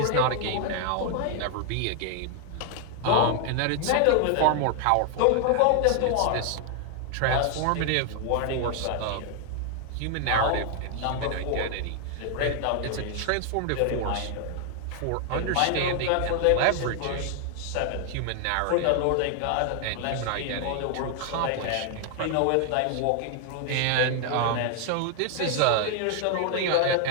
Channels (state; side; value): different; both; correlation 0.00